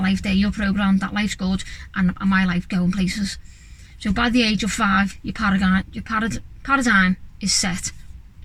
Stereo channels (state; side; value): identical; both; correlation 1.00